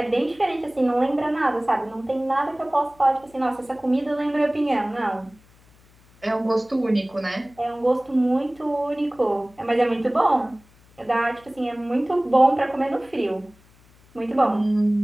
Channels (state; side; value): noise; left; hum, 29 dB below the sound